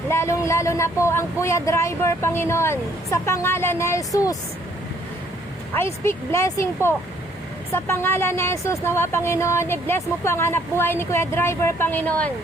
na po ang Kuya Driver, Panginoon. Sa pangalan ni Jesus, I speak blessing po. Sa pangalan ni Jesus, nawa, Panginoon, i-bless mo po ang hanap buhay ni Kuya Driver, Panginoon.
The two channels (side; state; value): both; normal; correlation 0.64